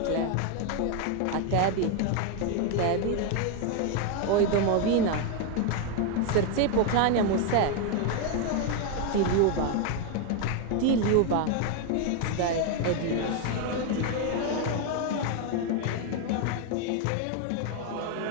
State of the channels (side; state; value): both; different; correlation 0.01